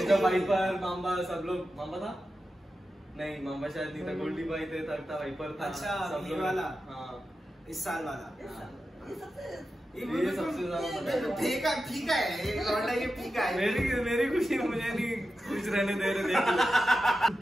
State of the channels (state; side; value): normal; both; correlation 0.91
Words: जब वाइपर मामा सब लोग, मामा था नहीं, मामा शायद नहीं था, गोल्डी भाई थे, था वाइपर था। अच्छा सब ये वाला, हाँ इस साल वाला ये सबसे ज्यादा फीका फीका है ये लौंडा, ये फीका है। मेरी खुशी मुझे नहीं कुछ रहने दे रहे देख।